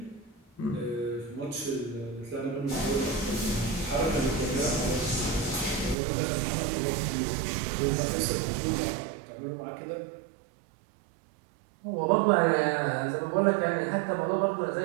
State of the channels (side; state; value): left; drops out; at 6.0 s